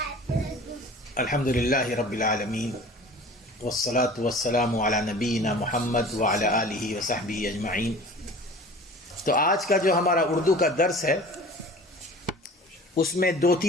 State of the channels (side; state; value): both; normal; correlation 0.43